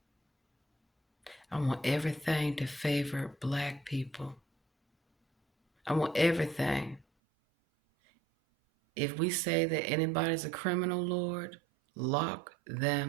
I want everything to favor black people. I want everything. If we say that anybody's a criminal, Lord, lock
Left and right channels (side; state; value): left; drops out; at 7.1 s